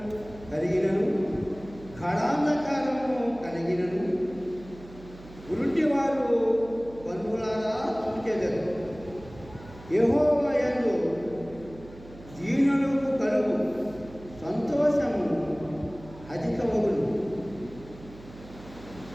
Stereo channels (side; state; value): right; noise; hum, 18 dB below the sound